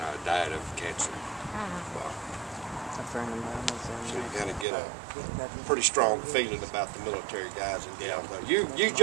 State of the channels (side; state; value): left; drops out; at 4.7 s